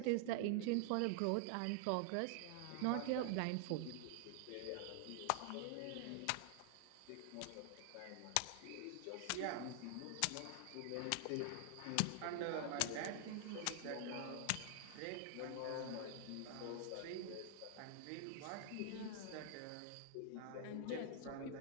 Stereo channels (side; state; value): both; different; correlation 0.00